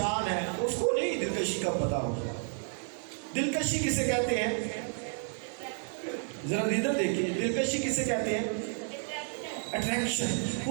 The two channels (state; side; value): silent; left; 57 dB below the other